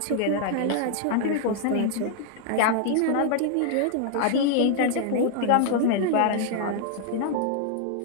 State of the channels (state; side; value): different; both; correlation 0.00